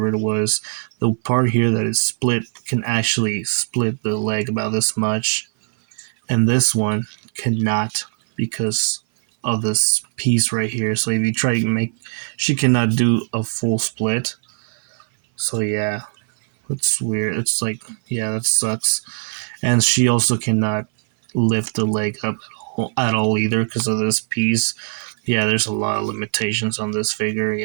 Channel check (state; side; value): silent; left; 58 dB below the other